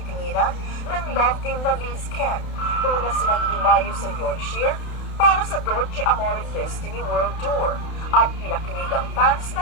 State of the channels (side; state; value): right; late; 31 ms